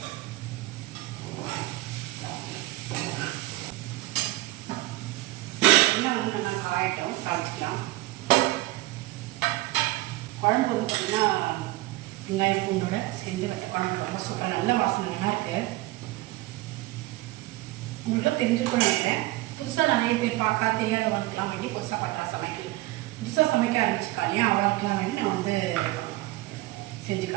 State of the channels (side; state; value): left; quieter; 18.7 dB